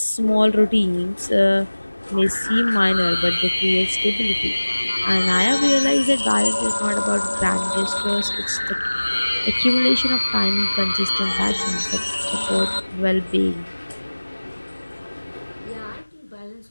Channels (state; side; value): inverted; both; correlation -1.00